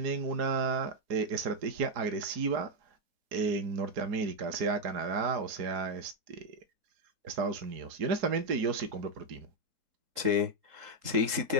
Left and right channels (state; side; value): late; left; 3.8 ms